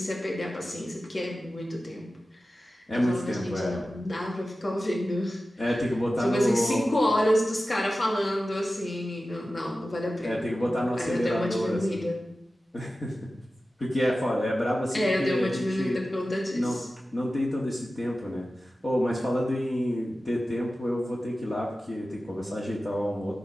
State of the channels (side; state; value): both; normal; correlation 0.95